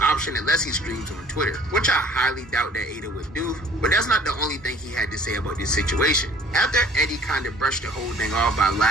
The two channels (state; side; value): normal; both; correlation 0.53